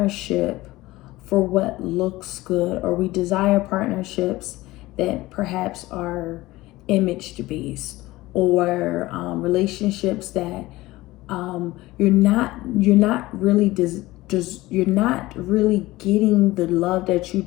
for what looks good, or we desire partnerships that perhaps are image based, or relationships that you're not really you're not really getting the love that you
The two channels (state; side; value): quieter; right; 18.6 dB